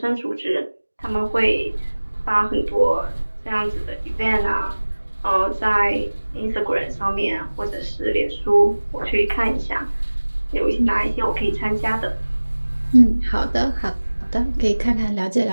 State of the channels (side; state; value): both; inverted; correlation -1.00